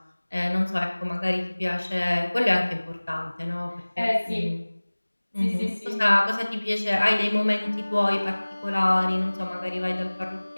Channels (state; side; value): inverted; both; correlation -1.00